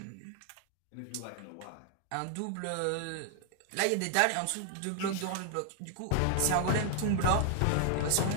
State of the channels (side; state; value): both; different; correlation 0.00